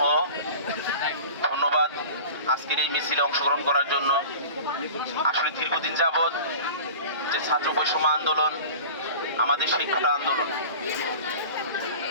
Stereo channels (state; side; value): inverted; both; correlation -0.38